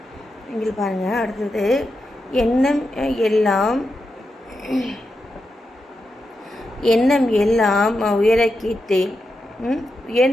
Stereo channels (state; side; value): normal; both; correlation 0.87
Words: இங்கே பாருங்கள். அடுத்தது எண்ணம் எல்லாம் எண்ணம் எல்லாம் உயர கேட்டேன்.